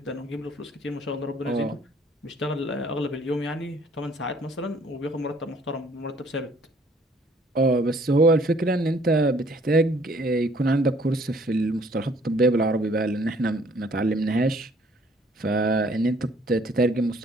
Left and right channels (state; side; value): normal; both; correlation 0.60